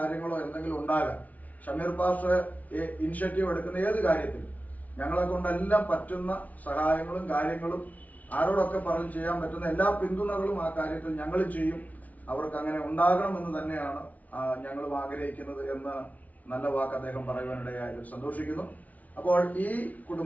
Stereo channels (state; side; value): late; right; 0.072 ms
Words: എന്തെങ്കിലും ഉണ്ടാകാം, ഷമീർ പാസ്റ്റർ ഇനിഷ്യേറ്റീവ് എടുക്കുന്ന ഏത് കാര്യത്തിലും ഞങ്ങളെ കൊണ്ടെല്ലാം പറ്റുന്ന സഹായങ്ങളും കാര്യങ്ങളും ആരോടൊക്കെ പറഞ്ഞ് ചെയ്യാൻ പറ്റുന്ന എല്ലാ പിന്തുണകളും ആ കാര്യത്തിൽ ഞങ്ങൾ ചെയ്യും, അവർക്ക് അങ്ങനെ ഉണ്ടാകണമെന്ന് തന്നെയാണ് ഞങ്ങളും ആഗ്രഹിക്കുന്നത് എന്ന് നല്ല വാക്ക് അദ്ദേഹം പറയുവാനിടയായതിൽ സന്തോഷിക്കുന്നു. അപ്പോൾ ഈ